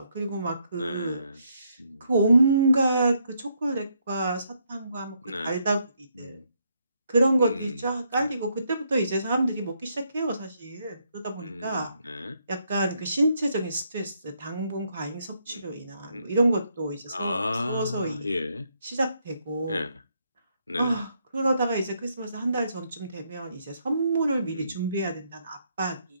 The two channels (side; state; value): both; inverted; correlation -0.75